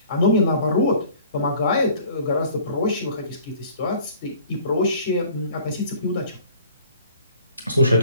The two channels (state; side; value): inverted; both; correlation -0.51